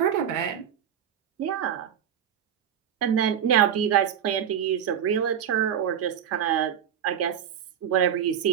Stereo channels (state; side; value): quieter; left; 9.1 dB